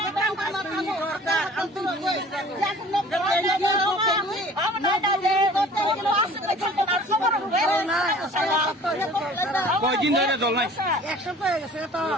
orang kana kamu antum কয়দিন ধরে জল নাই এক সপ্তাহ হয়ে গেছে তো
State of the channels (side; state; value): both; normal; correlation 0.47